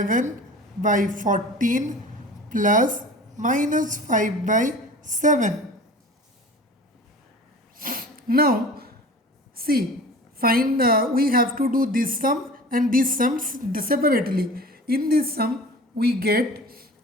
by 14 plus minus 5 by 7. Now, see, we have to do this sum and this sum separately. In this sum, we get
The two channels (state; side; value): normal; both; correlation 0.40